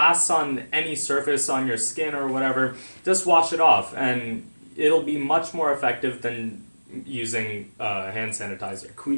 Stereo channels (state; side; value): inverted; both; correlation -1.00